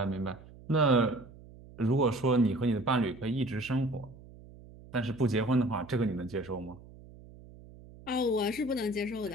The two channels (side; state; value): right; noise; hum, 20 dB below the sound